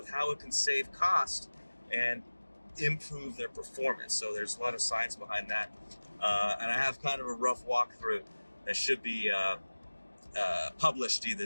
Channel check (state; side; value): inverted; both; correlation -1.00